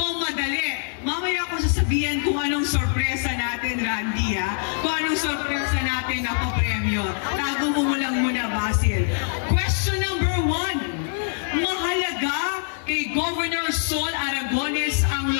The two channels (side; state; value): right; silent; digital silence